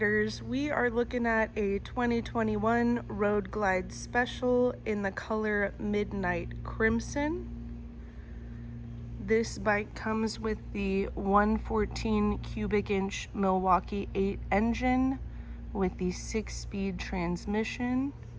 we are looking at a 2021 Road Glide Special in the color Midnight Crimson. This bike comes with the 114 cubic inch Milwaukee 8 engine with the 6-speed transmission.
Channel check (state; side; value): identical; both; correlation 1.00